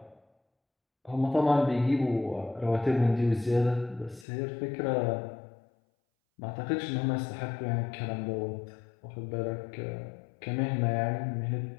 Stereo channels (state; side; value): drops out; right; at 4.2 s